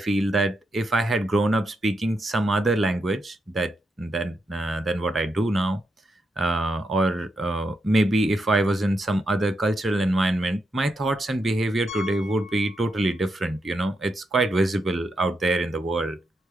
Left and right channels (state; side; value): normal; both; correlation 0.83